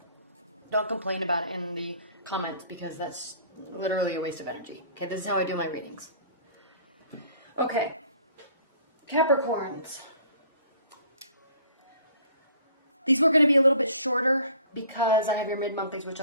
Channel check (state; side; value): inverted; both; correlation -0.53